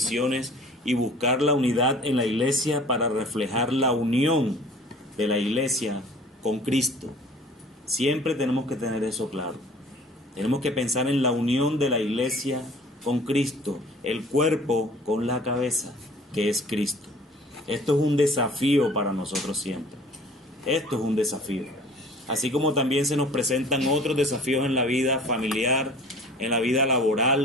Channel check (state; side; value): normal; both; correlation 0.48